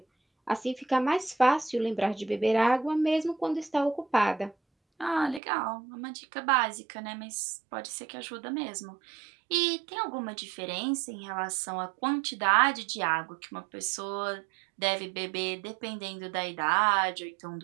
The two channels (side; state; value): left; drops out; at 5.4 s